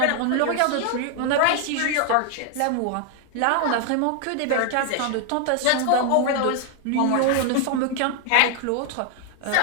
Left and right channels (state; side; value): different; both; correlation 0.00